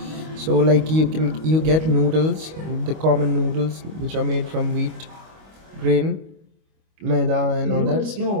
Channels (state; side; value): late; left; 25 ms